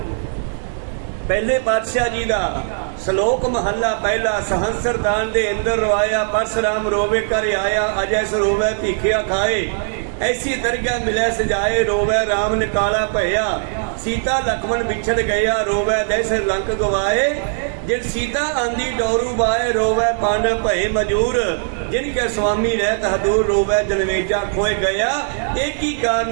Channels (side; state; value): left; silent; digital silence